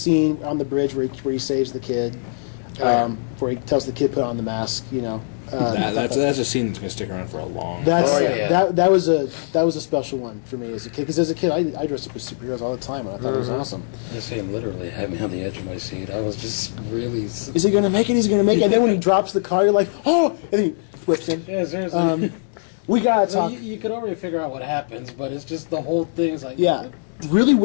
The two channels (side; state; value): right; silent; digital silence